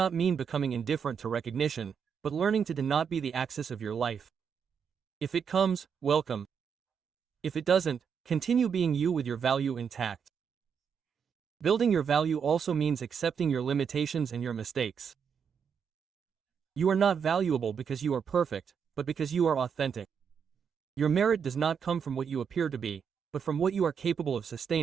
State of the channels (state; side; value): quieter; left; 7.0 dB